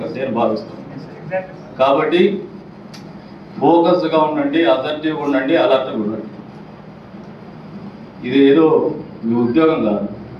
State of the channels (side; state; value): both; identical; correlation 1.00